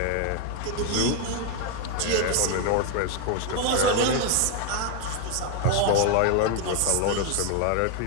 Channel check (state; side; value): different; both; correlation 0.01